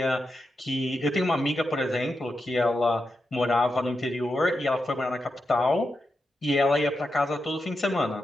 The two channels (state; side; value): normal; both; correlation 0.87